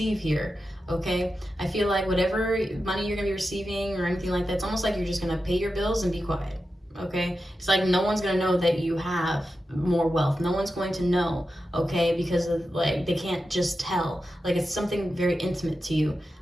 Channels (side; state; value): both; normal; correlation 0.91